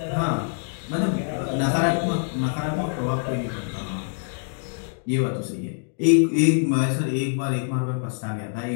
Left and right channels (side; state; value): right; silent; digital silence